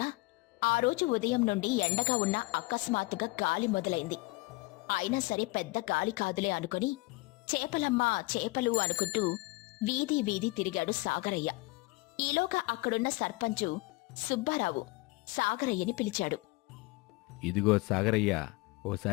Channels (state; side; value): quieter; right; 23.7 dB